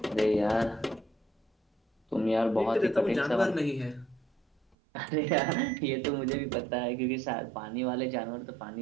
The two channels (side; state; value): left; drops out; at 4.8 s